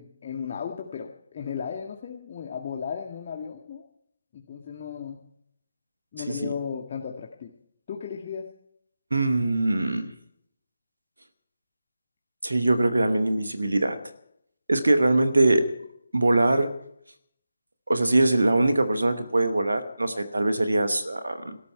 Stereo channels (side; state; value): both; inverted; correlation -0.92